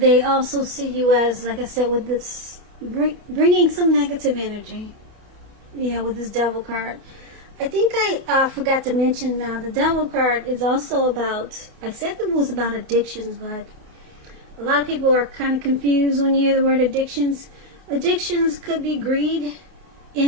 also see you as, like I said, with this bringing some negative energy. Yeah, with this Devil card. I think I forgot to mention now, the Devil card is also about, I said it was about addictions, but a lot of people are kind of confused when you hear the word addictions. Addictions could be greed,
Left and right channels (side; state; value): left; late; 28 ms